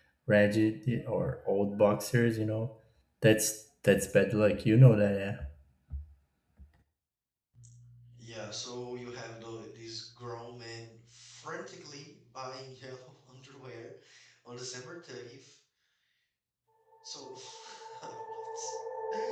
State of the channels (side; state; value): both; identical; correlation 1.00